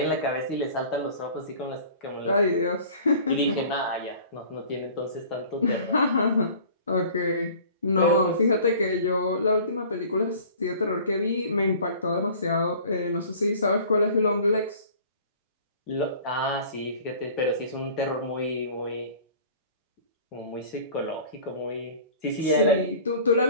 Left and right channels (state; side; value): inverted; both; correlation -0.46